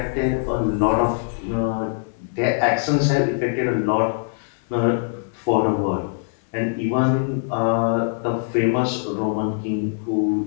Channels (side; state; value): right; silent; 64 dB below the other